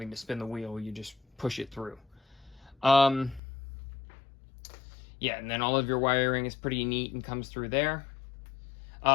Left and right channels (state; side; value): drops out; right; at 3.4 s